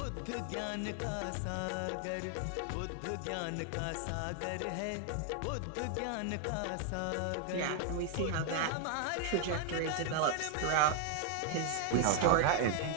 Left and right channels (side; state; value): both; different; correlation 0.00